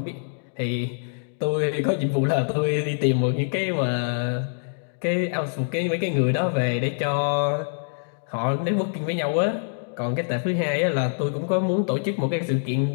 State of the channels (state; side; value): silent; right; digital silence